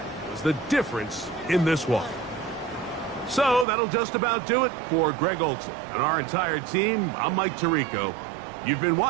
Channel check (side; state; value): left; drops out; at 3.7 s